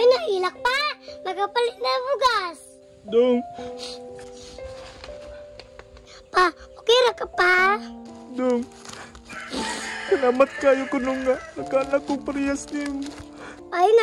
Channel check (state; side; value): identical; both; correlation 1.00